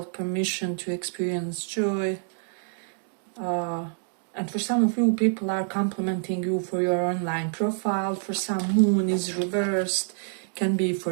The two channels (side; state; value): left; silent; digital silence